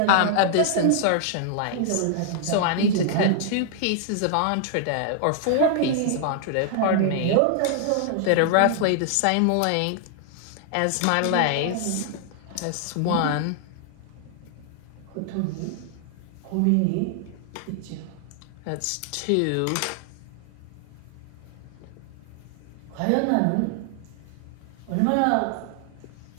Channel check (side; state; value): both; different; correlation -0.01